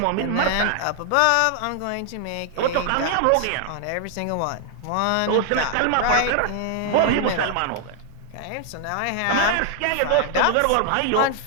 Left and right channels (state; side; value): different; both; correlation 0.00